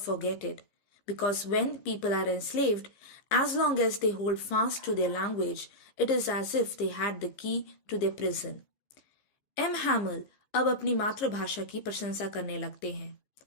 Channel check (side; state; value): right; late; 15 ms